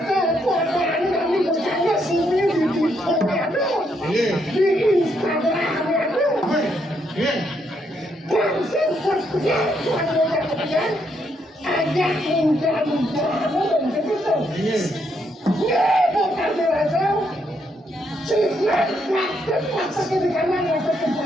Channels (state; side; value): normal; both; correlation 0.75